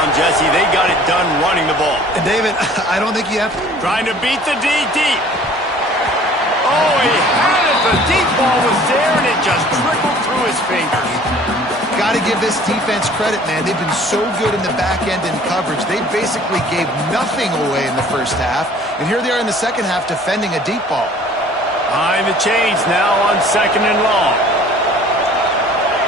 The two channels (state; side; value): normal; both; correlation 0.51